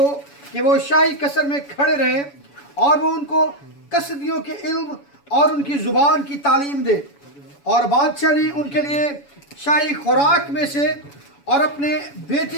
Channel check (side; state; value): right; late; 7.1 ms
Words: कि वो शाही कसर में खड़े रहें और वो उनको कसदियों के इल्म और उनकी ज़ुबान की तालीम दे। और बादशाह ने उनके लिए शाही खुराक में से और अपने